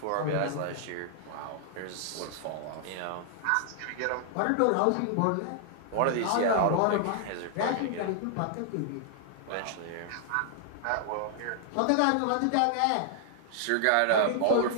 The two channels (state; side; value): different; both; correlation -0.01